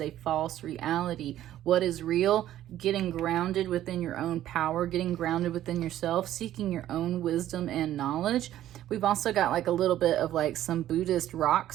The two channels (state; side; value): quieter; left; 12.7 dB